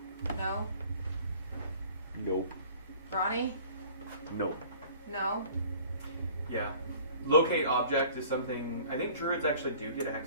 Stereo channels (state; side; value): inverted; both; correlation -0.49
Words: No? Nope. Ronnie? Nope. No? Yeah. Locate object is something I think druids actually do get